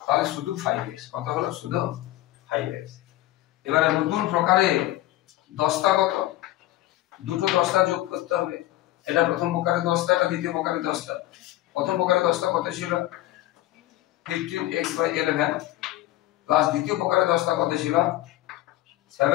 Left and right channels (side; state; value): right; quieter; 16.1 dB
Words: তাহলে শুধু 5x। কত হলো? শুধু 5x। এবারে নতুন প্রকারে দশটা কত? দুটো দশটা যোগ করতে হবে। এটা প্রথম প্রকারে 10টা, এটা দ্বিতীয় প্রকারে 10টা। প্রথম প্রকারে 10টা কত ছিল? 15x বাই 11 প্লাস দ্বিতীয় প্রকারে 10টা কত ছিল?